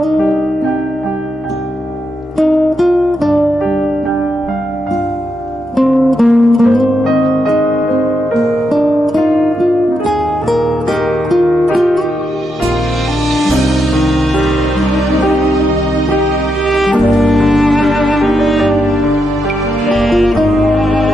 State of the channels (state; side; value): normal; both; correlation 0.83